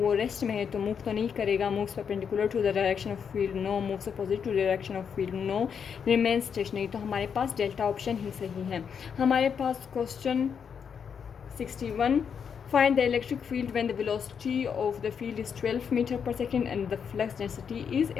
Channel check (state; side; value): quieter; right; 7.0 dB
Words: रेस्ट में है तो मूव तो नहीं करेगा। Moves perpendicular to the direction of field, no. Moves opposite to direction of field, no. Remain stationary. तो हमारे पास डेल्टा ऑप्शन ही सही है। हमारे पास question 61, find the electric field when the velocity of the field is 12 meter per second and the flux density is